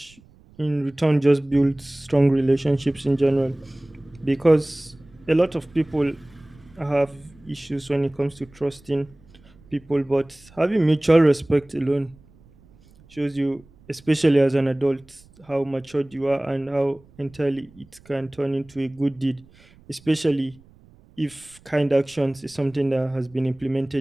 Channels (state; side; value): noise; right; rumble, 27 dB below the sound